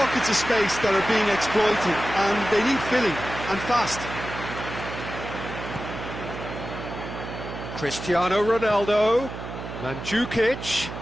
of space that are being exploited, and they need filling, and fast. Cristiano Ronaldo, Mandzukic.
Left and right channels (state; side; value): noise; right; hum, 9 dB below the sound